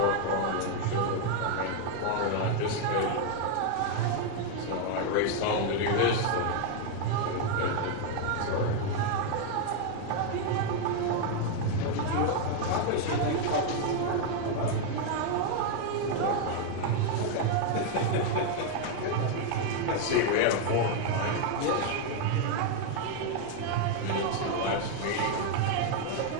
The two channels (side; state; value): both; different; correlation 0.00